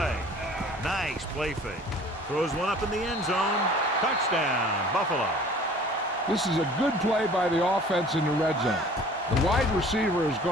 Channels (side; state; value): both; normal; correlation 0.49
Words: Nice play fake. Throws one up in the end zone. Touchdown, Buffalo. This is a good play by the offense in the red zone. The wide receiver is